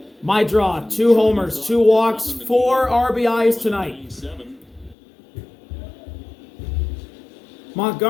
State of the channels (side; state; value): right; drops out; at 5.0 s